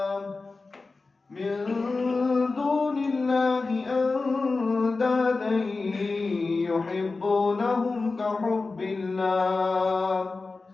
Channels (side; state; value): right; quieter; 3.8 dB